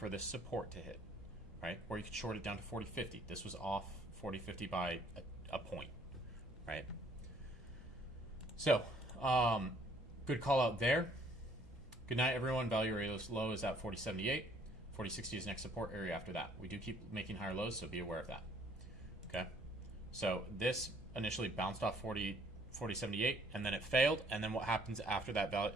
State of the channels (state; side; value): normal; both; correlation 0.62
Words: this support to hit, right? Or you could short it down to 40.50. This was off 40.50 by a point, right? So good call out there. Good night, everyone. Value area low is at 40.78. 40.60 is next support area after that. We do keep making higher lows, so be aware of that. Okay. So this initially bounced off 40.78, and then it failed. And then what happens after